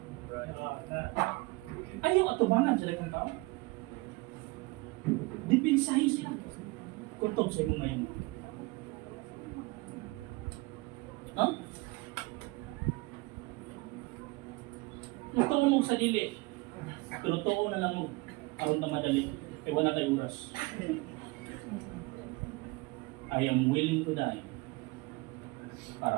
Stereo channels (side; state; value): left; quieter; 24.6 dB